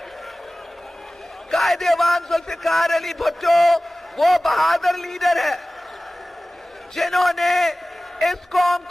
قائد ایوان ذوالفقار علی بھٹو وہ بہادر لیڈر ہے جنہوں نے اس قوم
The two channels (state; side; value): normal; both; correlation 0.97